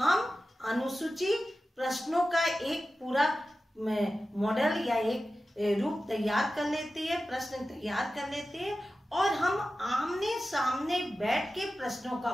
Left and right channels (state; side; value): normal; both; correlation 0.94